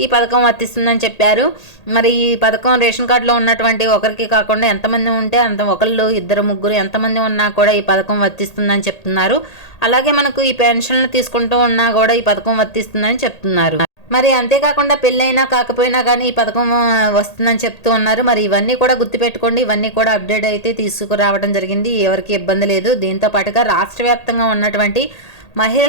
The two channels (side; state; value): right; late; 1.8 ms